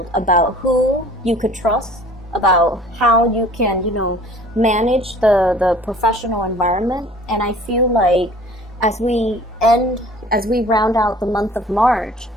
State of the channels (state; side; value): normal; both; correlation 0.49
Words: about who you could trust, about how you can, you know, manage the professional environment. And I feel like as we round out the month of March,